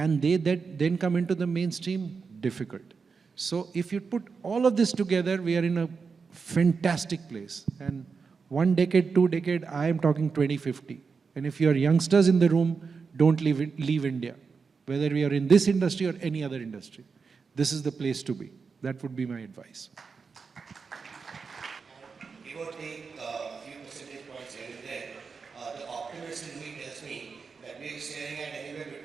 they then come into the mainstream? Difficult. So if you put all of this together, we are in a fantastic place. And 1 decade, 2 decade, I am talking 2050. And if you are youngsters in the room, don't leave India. Whether we are in this industry or any other industry, this is the place to be. That would be my advice. Give or take a few percentage points here and there, the optimist in me tells me that we are staring at anywhere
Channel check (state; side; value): quieter; left; 5.2 dB